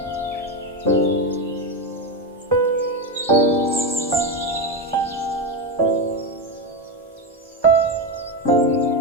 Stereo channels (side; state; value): both; normal; correlation 0.13